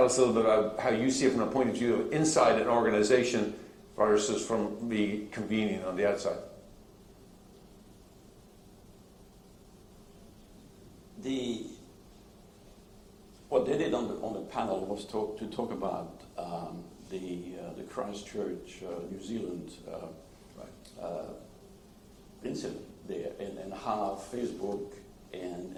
us a little bit about how you see it from a point of view of inside an organization versus from the convening on the outside. What they did on the panel was to talk about the Christchurch, New Zealand incident there, and how Facebook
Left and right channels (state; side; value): identical; both; correlation 1.00